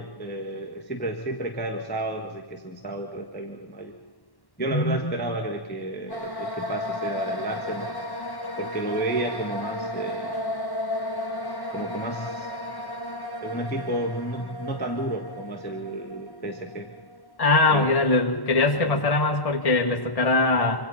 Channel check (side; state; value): right; late; 1.1 ms